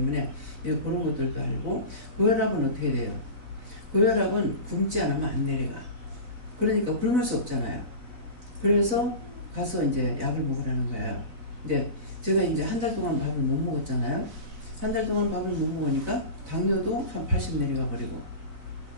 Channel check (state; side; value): late; left; 4.0 ms